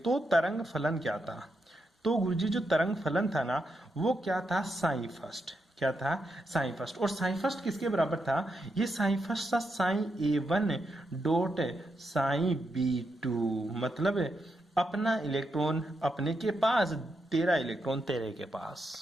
तरंग फलन क्या था? तो गुरुजी जो तरंग फलन था ना, वो क्या था? Psi first. क्या था, साइन फर्स्ट। और साइन फर्स्ट किसके बराबर था, ये साइन फर्स्ट था psi A1 dot psi B2, मतलब अपना इलेक्ट्रॉन अपने के पास, तेरा इलेक्ट्रॉन तेरे के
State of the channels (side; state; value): both; normal; correlation 0.83